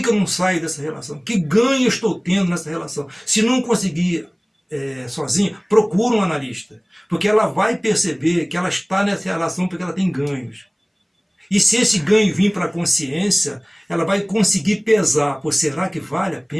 eu não saio dessa relação? Que ganho eu estou tendo nessa relação? Se não conseguir sozinho, procura um analista. Porque ela vai perceber que ela está nessa relação porque ela tem ganhos. E se esse ganho vir para a consciência, ela vai conseguir pesar. Pô, será que vale a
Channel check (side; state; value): both; identical; correlation 1.00